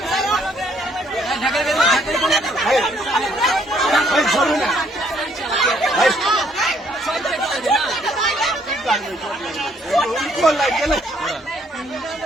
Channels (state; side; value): normal; both; correlation 0.67